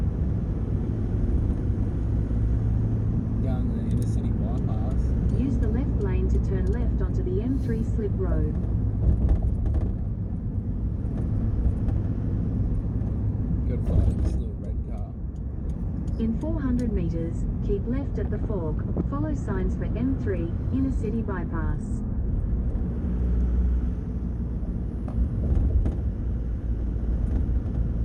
Going to the inner city bypass. Use the left lane to turn left onto the M3 slip road. Good fight, this little red car. In 400 meters, keep left at the fork. Follow signs for M3, inner city bypass.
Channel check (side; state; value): both; identical; correlation 1.00